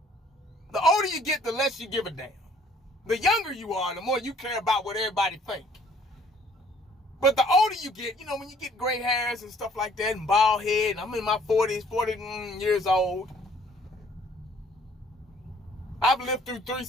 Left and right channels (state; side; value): normal; both; correlation 0.59